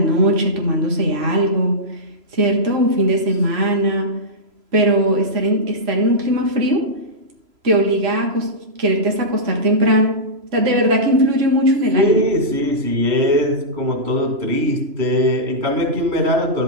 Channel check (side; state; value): left; late; 3.0 ms